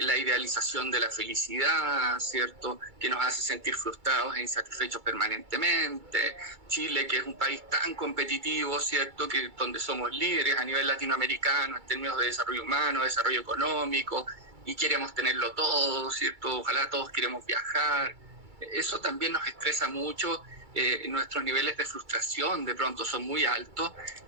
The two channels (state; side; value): late; left; 2.3 ms